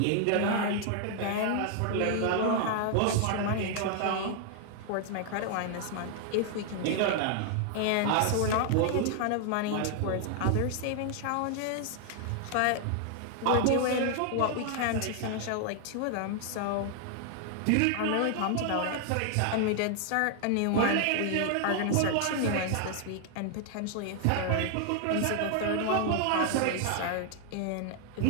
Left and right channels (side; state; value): both; different; correlation 0.00